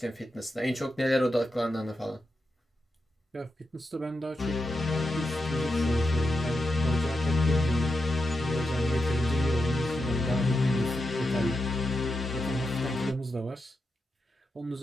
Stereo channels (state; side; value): normal; both; correlation 0.87